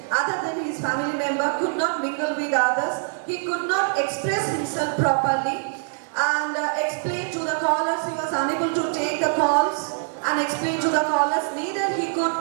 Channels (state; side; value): silent; left; 63 dB below the other